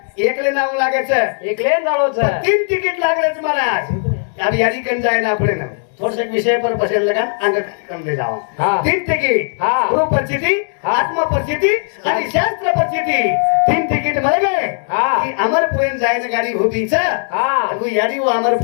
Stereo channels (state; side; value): silent; right; 57 dB below the other